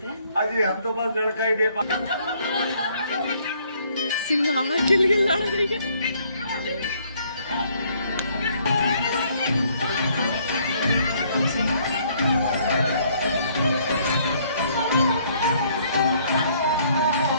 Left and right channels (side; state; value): both; inverted; correlation -0.64